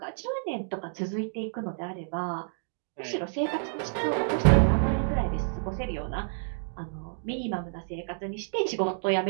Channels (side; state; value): left; silent; digital silence